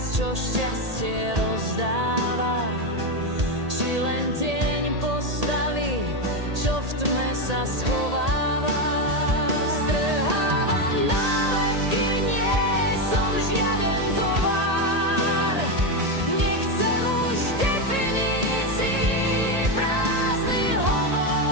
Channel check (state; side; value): late; left; 1.8 ms